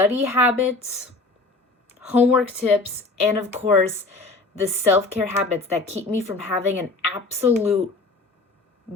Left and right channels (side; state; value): right; quieter; 3.3 dB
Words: habits, homework tips, and of course the self-care habits that keep me from having an absolute